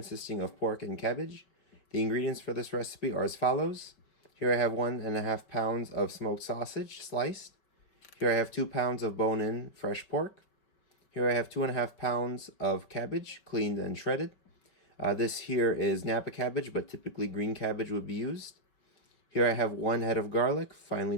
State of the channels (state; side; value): late; right; 4.9 ms